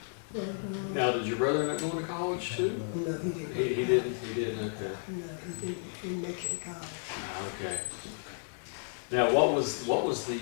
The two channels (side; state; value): right; silent; digital silence